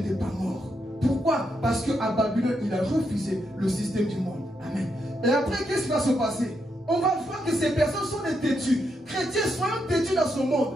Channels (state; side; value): normal; both; correlation 0.81